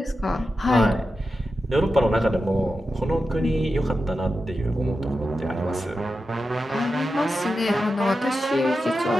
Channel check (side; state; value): both; normal; correlation 0.90